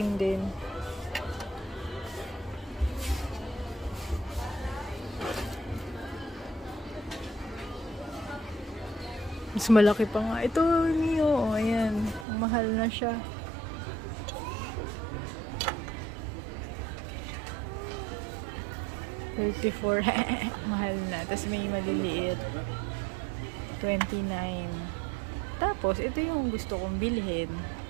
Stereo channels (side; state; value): left; drops out; at 12.2 s